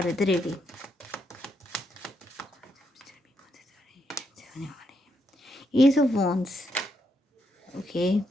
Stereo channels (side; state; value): both; normal; correlation 0.79